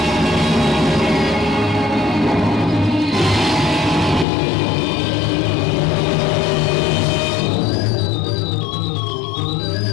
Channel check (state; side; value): drops out; right; at 4.2 s